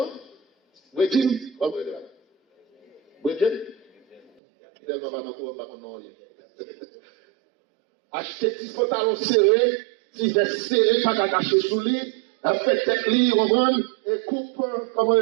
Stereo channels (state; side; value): drops out; left; at 4.3 s